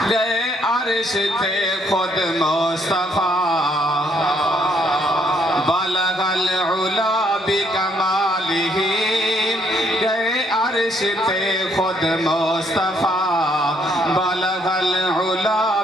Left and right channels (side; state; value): both; normal; correlation 0.69